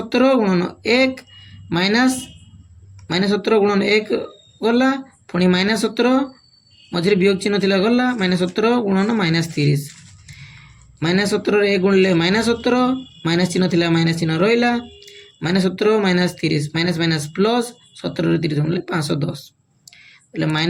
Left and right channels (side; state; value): both; identical; correlation 1.00